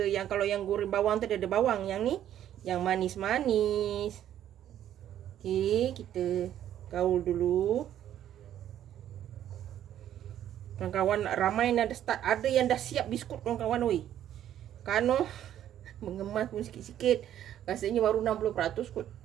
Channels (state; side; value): quieter; left; 11.1 dB